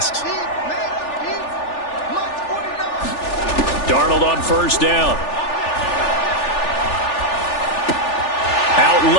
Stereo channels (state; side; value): late; right; 3.4 ms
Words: Darnold on 1st down. Out